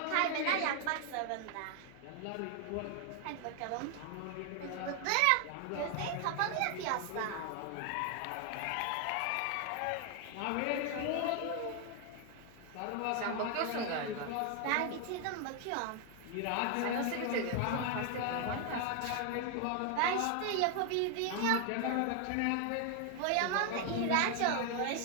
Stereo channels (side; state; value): both; different; correlation 0.00